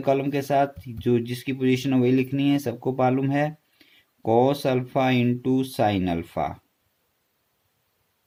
कॉलम के साथ, जो जिसकी पोजीशन है वही लिखनी है, सबको मालूम है। Cos alpha into sine alpha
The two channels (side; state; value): both; identical; correlation 1.00